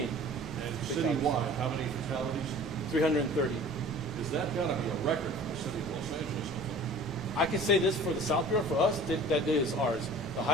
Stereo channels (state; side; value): normal; both; correlation 0.44